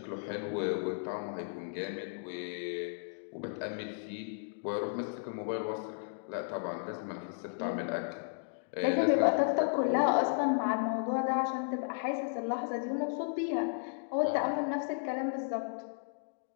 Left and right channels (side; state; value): right; silent; digital silence